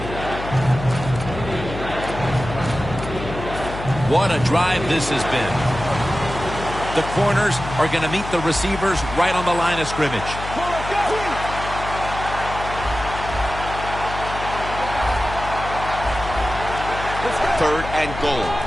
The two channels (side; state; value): left; noise; hum, 9 dB below the sound